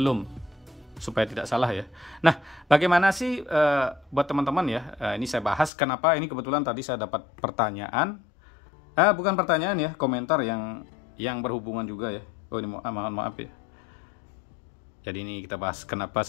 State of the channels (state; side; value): drops out; right; at 5.7 s